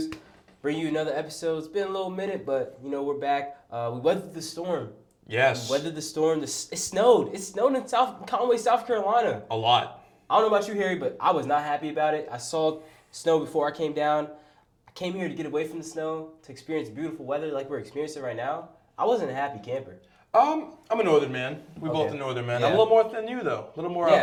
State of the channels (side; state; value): both; identical; correlation 1.00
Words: Bring you another episode. It's been a little minute, but, we're back. We weathered the storm. Yes. We weathered the storm. It snowed. It snowed in Conway, South Carolina. A lot. I don't know about you, Harry, but I was not happy about it. I saw snow before I came down. I came here to get away from the snow, to experience beautiful weather like we're experiencing right now. I wasn't a happy camper. I'm a northern man. We both are northern man. I'm a little more than you though. A little more